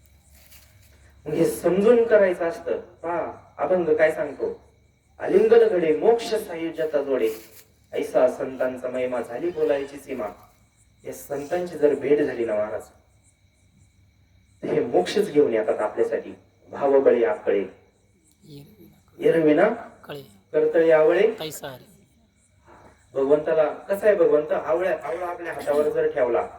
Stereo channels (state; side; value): identical; both; correlation 1.00